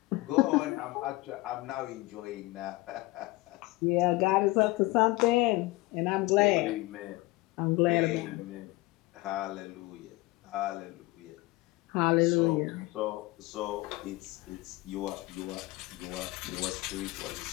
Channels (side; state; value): right; quieter; 21.3 dB